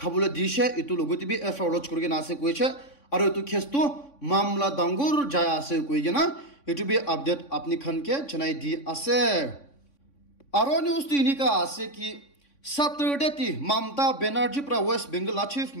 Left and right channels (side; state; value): right; late; 3.6 ms